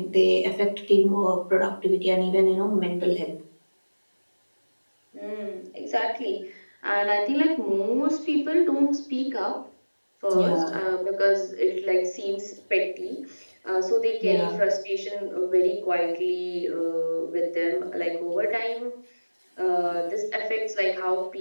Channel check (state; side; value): inverted; both; correlation -1.00